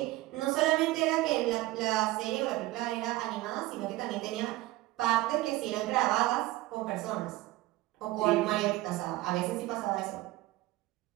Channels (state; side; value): quieter; left; 18.1 dB